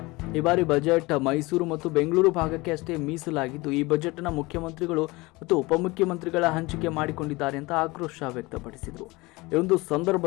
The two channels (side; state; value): right; quieter; 22.8 dB